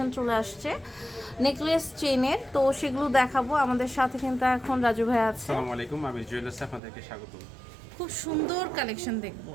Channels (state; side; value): drops out; left; at 6.8 s